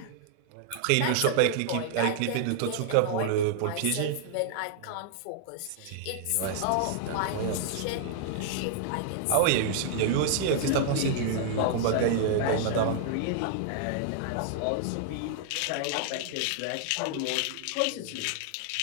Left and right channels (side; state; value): both; different; correlation 0.00